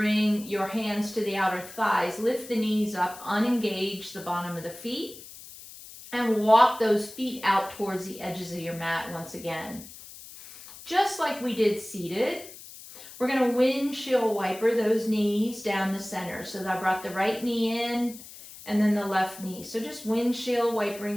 your hands to the outer thighs, lift the knees up, unengage the bottom of the feet, and walk those feet out towards the edges of your mat once again. Just like we did seated, we're going to windshield wiper those knees down the center. So I brought the right knee in and then the left knee. So just windshield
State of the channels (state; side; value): noise; left; hiss, 16 dB below the sound